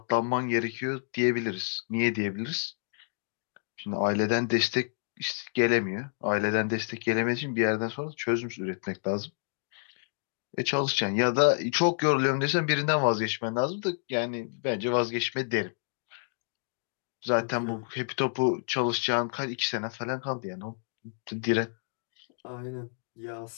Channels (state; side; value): silent; right; digital silence